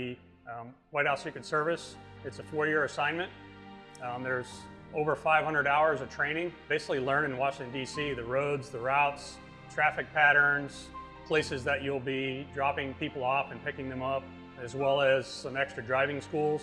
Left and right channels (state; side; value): identical; both; correlation 1.00